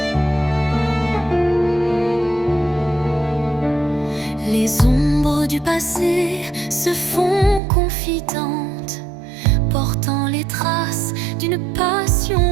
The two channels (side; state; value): left; drops out; at 7.6 s